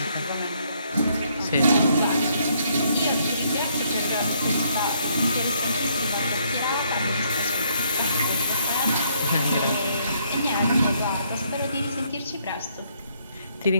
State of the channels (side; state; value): both; inverted; correlation -0.70